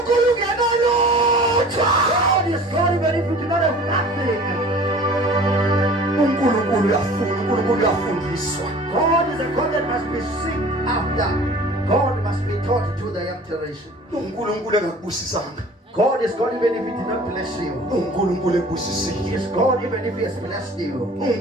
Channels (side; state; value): both; normal; correlation 0.45